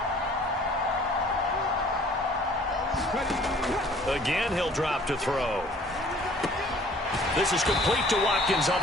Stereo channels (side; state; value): both; normal; correlation 0.54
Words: Again, he'll drop to throw. This is complete to Watkins on